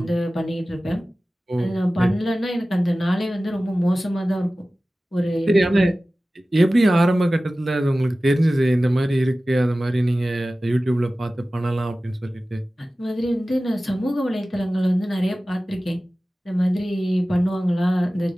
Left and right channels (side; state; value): both; normal; correlation 0.96